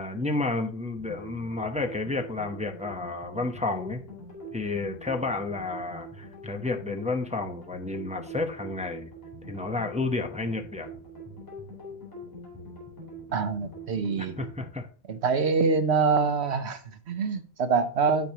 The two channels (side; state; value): both; normal; correlation 0.13